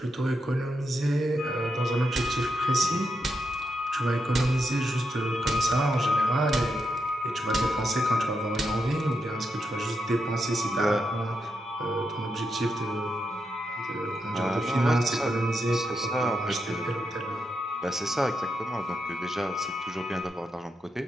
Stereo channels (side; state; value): both; normal; correlation 0.84